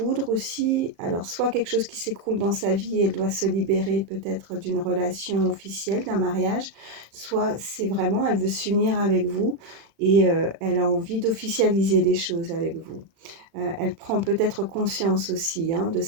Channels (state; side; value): late; left; 36 ms